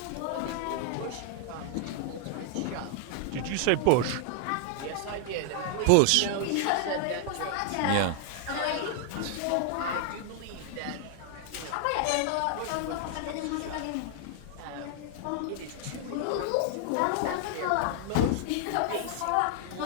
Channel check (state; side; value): different; both; correlation 0.00